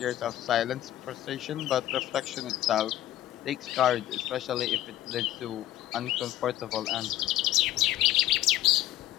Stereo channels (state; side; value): quieter; right; 14.0 dB